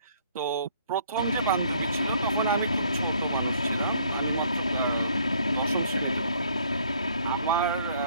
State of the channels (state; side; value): inverted; both; correlation -0.62